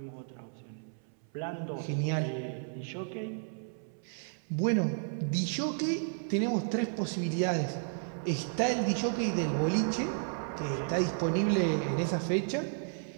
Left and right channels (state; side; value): silent; left; 56 dB below the other